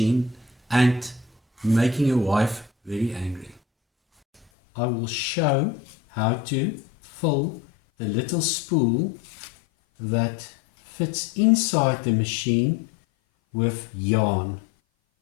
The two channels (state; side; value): drops out; right; at 4.5 s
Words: and making your wife very angry. I will show how to fill the little spool that fits inside the machine with yarn.